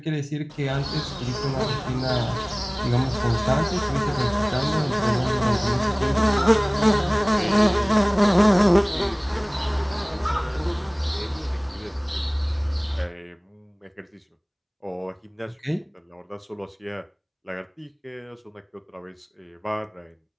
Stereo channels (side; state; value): both; identical; correlation 1.00